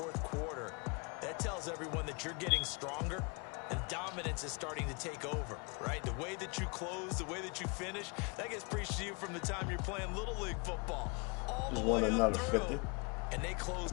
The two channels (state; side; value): quieter; right; 31.8 dB